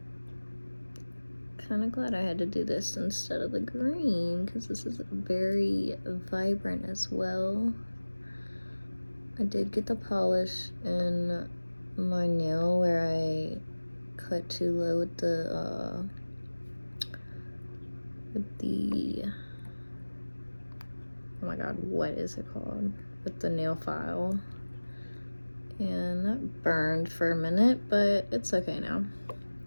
Kind of glad I had to do this instead of the green because this is very vibrant as well. I did get the polish in my nail where I cut too low with the oh my god, what is it called? With the nail file. And that burned for a minute, but it's okay now.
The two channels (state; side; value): inverted; both; correlation -1.00